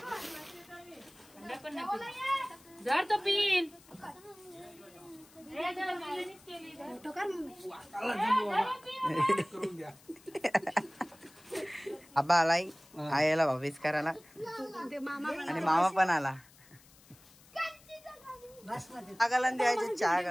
जर तो पिन आबा आलाय आईला भाभीच करायला आणि मामा पण आला. चहा गलन द्यायचे चहा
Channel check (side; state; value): left; noise; hiss, 25 dB below the sound